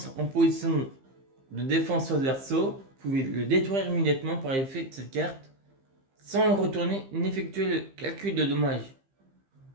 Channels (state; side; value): late; left; 15 ms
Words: en position de défense sur le verso, vous pouvez le détruire immédiatement par effet de cette carte, sans le retourner ni effectuer le calcul de dommages.